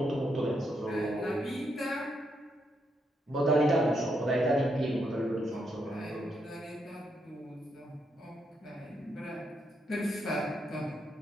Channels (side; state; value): both; normal; correlation 0.79